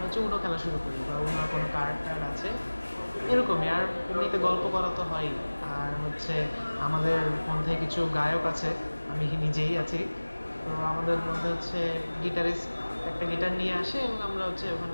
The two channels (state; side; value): inverted; both; correlation -1.00